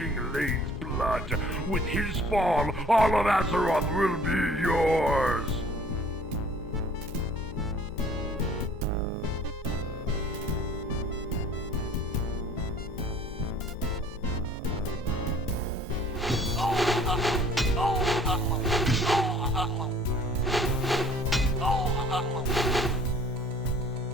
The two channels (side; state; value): both; normal; correlation 0.53